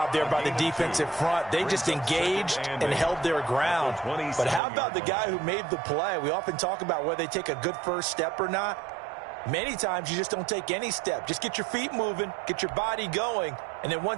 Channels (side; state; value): left; drops out; at 4.6 s